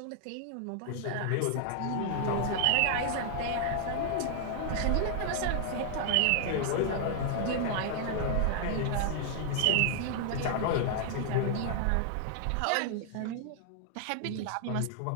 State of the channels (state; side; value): different; both; correlation 0.00